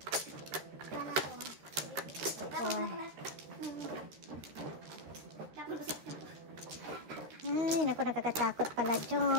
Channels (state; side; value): late; left; 13 ms